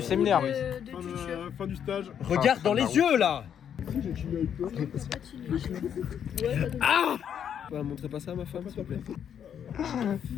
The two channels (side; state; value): right; quieter; 8.7 dB